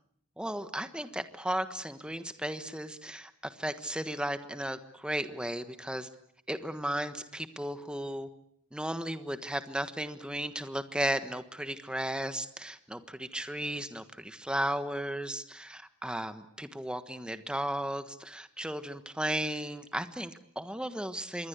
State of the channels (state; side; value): normal; both; correlation 0.83